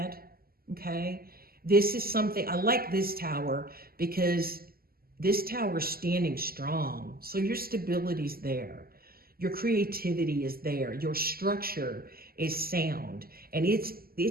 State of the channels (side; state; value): left; late; 0.43 ms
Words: Okay. This is something, I like this Tower because this Tower is standing strong. So your stability's there. Your creativity is there. Your structure is sound. And